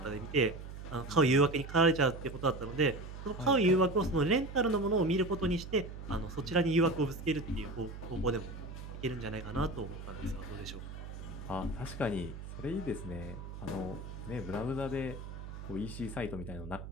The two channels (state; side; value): noise; right; hum, 10 dB below the sound